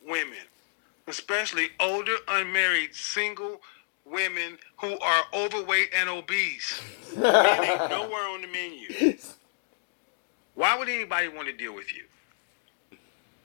women. Especially older, unmarried, single women who are overweight and obese. Men ain't nowhere on the menu. Why would anybody want to deal with you?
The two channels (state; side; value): silent; right; digital silence